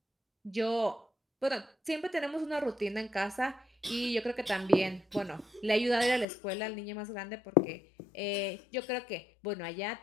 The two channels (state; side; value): drops out; right; at 6.2 s